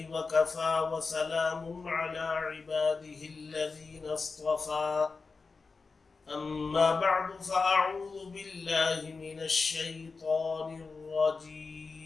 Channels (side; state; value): right; quieter; 4.4 dB